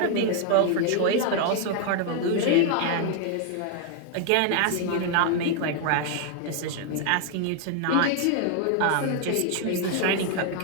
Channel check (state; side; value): different; both; correlation 0.00